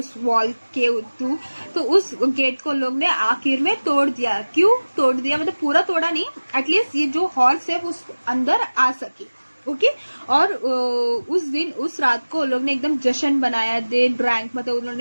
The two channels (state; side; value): inverted; both; correlation -1.00